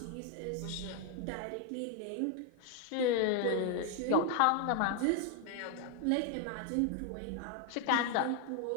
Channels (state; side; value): different; both; correlation 0.01